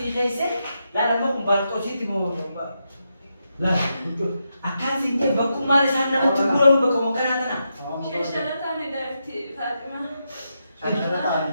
kaise la lama kumbantu sih timo lah akan singje baku mari sana mau tiburan baku makan ana Shishala tane dari Fatima. sana tadi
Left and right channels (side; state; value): both; inverted; correlation -0.84